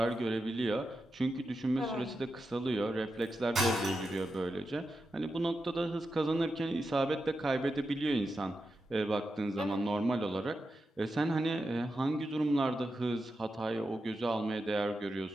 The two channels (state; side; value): normal; both; correlation 0.89